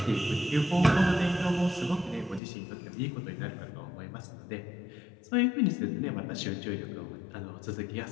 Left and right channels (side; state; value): right; drops out; at 2.4 s